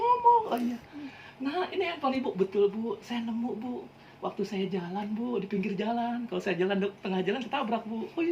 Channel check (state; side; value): identical; both; correlation 1.00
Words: Oh iya. Nah ini handphone ibu. Betul bu, saya nemu bu. Waktu saya jalan bu, di pinggir jalan. Kalau saya jalan tengah jalan ketabrak bu. Oh